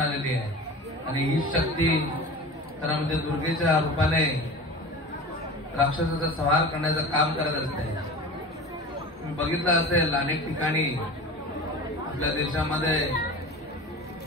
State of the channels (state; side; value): normal; both; correlation 0.35